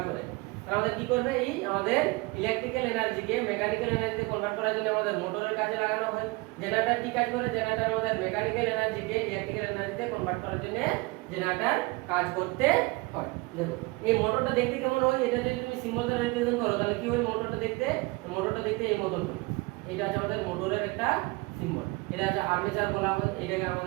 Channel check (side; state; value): left; quieter; 24.5 dB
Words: করে। তাহলে আমাদের কি করবে, এই আমাদের ইলেকট্রিক্যাল এনার্জিকে মেকানিক্যাল এনার্জিতে কনভার্ট করার জন্য আমাদের মোটরের কাজে লাগানো হয়। জেনারেটর কি কাজ করে, জেনারেটর আমাদের মেকানিক্যাল এনার্জিকে ইলেকট্রিক্যাল এনার্জিতে কনভার্ট করার জন্য জেনারেটর কাজ করতে হয়। দেখো এই মোটরটা দেখতে কেমন হয়, এটা যদি তুমি সিম্বল দ্বারা রিপ্রেজেন্ট করো তাহলে কি হয়, মোটরটা দেখতে এই মতন হয়। এটা আছে আমাদের মোটরের একটা সিম্বল, এটা আছে আর্মেচার বলা হয়, এটাকে